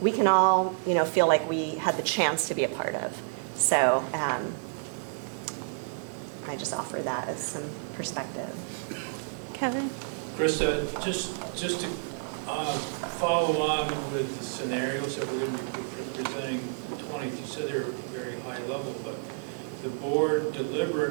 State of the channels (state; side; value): silent; left; digital silence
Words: we can all, feel like we had the chance to be a part of. So I just offer that as some perspective. Kevin? Krista, just to follow on with the scenarios that we're going to be presenting the 20th, you said they were very high level, but the board